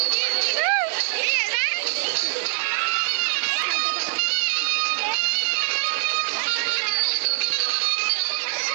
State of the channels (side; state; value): left; silent; digital silence